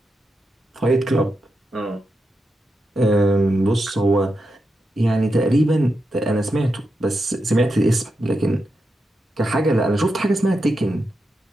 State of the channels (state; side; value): normal; both; correlation 0.87